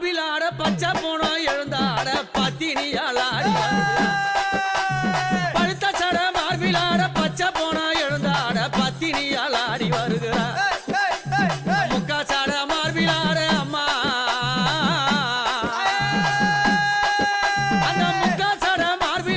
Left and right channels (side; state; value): both; identical; correlation 1.00